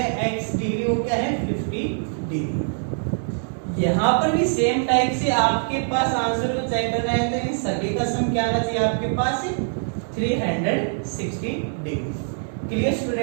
x डिग्री वो क्या है, 50 डिग्री। यहाँ पर भी सेम टाइप से आपके पास आंसर को चेक करना है, तो इन सभी का सम क्या आना चाहिए आपके पास, 360 degree. Clear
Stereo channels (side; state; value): left; silent; digital silence